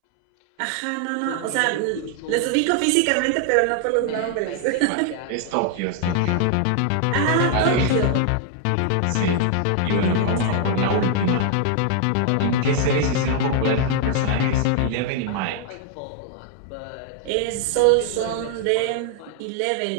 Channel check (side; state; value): both; different; correlation 0.00